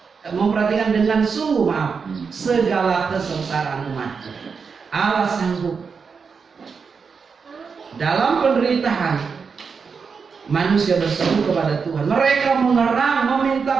memperhatikan dengan sungguh, segala kesengsaraan umatku. Allah sanggup dalam penderitaan. Manusia berseru kepada Tuhan, mereka mengerang,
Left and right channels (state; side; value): quieter; left; 5.6 dB